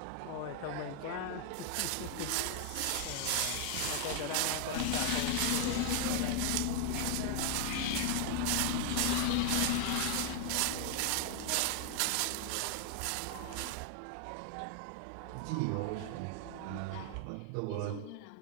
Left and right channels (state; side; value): different; both; correlation 0.00